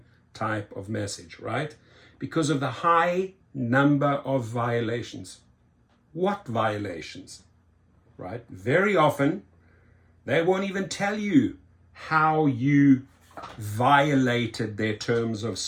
type of message, right? Because of the high number of violations. What violations? Right? Very often, they won't even tell you how you violated their terms of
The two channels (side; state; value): both; identical; correlation 1.00